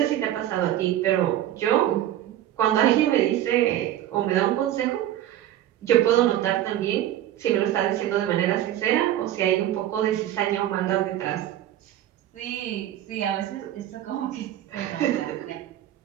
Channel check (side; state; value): left; quieter; 12.6 dB